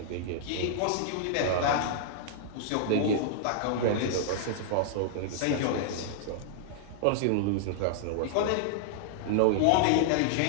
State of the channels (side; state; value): both; different; correlation -0.01